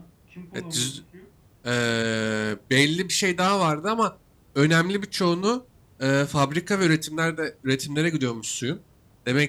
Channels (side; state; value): both; identical; correlation 1.00